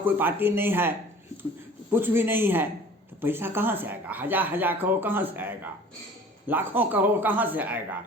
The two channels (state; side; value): normal; both; correlation 0.46